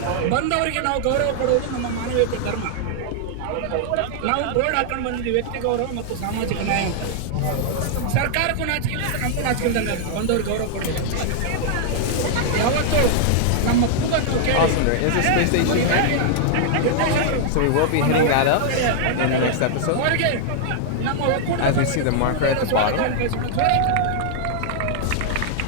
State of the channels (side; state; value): both; different; correlation -0.01